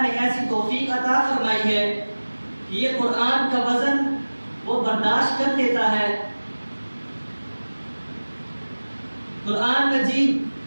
نے ایسی توفیق عطا فرمائی ہے کہ یہ قرآن کا وزن وہ برداشت کر لیتا ہے۔ قرآن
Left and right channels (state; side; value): inverted; both; correlation -1.00